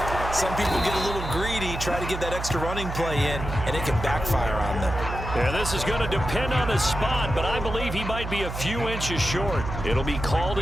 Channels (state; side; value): noise; right; hum, 6 dB below the sound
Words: Some people get a little greedy, try to get that extra running play in, and it can backfire on them. Yeah, this is going to depend on the spot, but I believe he might be a few inches short. It'll be called